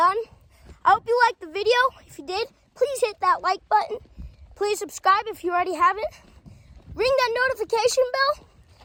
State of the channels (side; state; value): both; identical; correlation 1.00